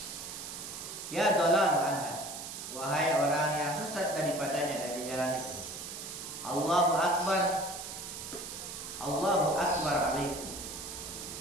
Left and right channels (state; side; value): noise; right; hiss, 9 dB below the sound